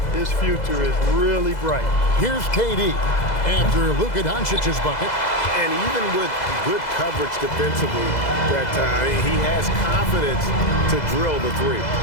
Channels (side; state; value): right; late; 2.0 ms